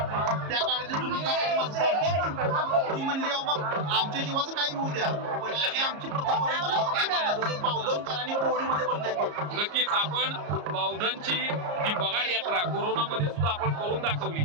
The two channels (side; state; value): left; late; 34 ms